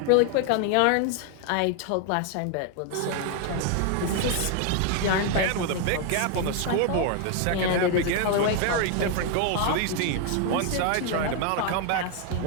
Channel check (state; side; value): different; both; correlation 0.01